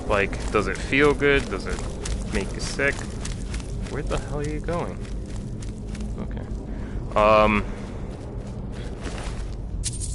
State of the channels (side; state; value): both; identical; correlation 1.00